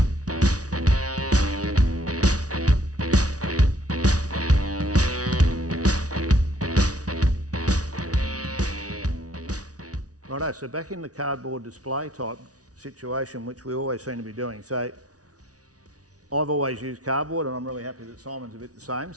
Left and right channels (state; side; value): late; left; 0.68 ms